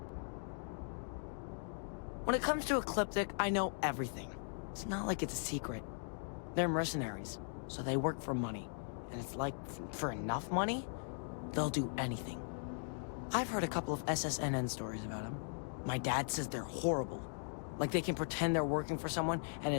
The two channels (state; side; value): silent; right; digital silence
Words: When it comes to Ecliptic, I know everything. It's not like it's a secret. They're mercenaries, so they work for money. And it's like, for enough money, they'll do anything. I've heard a couple of SSNN stories about them. My dad says they're horrible. Like they can pretend they're working for someone and